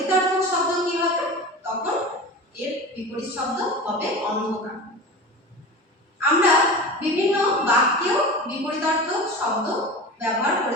শব্দ কি হবে, তখন এর বিপরীত শব্দ হবে অন্ধকার। আমরা বিভিন্ন বাক্যেও বিপরীতার্থক শব্দ ব্যবহার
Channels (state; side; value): normal; both; correlation 0.31